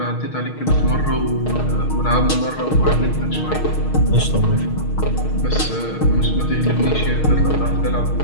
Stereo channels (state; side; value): late; right; 6.4 ms